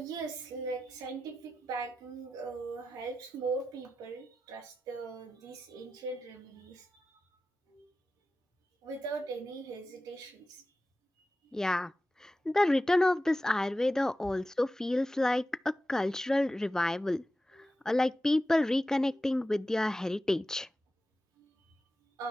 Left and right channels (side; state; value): both; normal; correlation 0.93